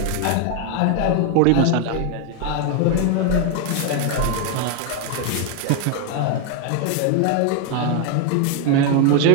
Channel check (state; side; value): different; both; correlation 0.01